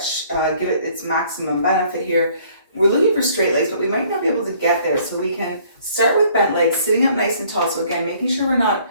give it its maximum benefit here. We're looking for straight legs, but we might not be able to get there. So we can start with bent legs, sitting up nice and tall. So again, making sure we're not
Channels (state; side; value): inverted; both; correlation -0.59